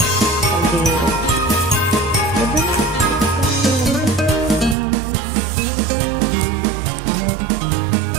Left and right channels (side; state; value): left; drops out; at 4.8 s